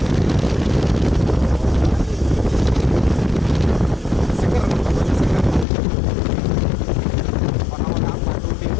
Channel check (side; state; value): right; drops out; at 5.7 s